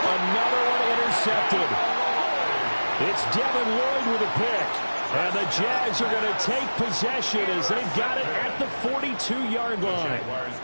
Another one intercepted. It's Devin Lloyd with a pick. And the Jags are going to take possession as they've got it at the 42-yard line. Jaguars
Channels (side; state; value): both; inverted; correlation -1.00